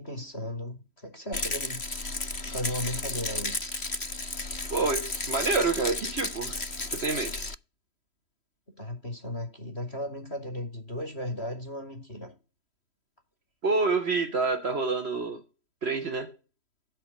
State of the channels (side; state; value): right; late; 3.1 ms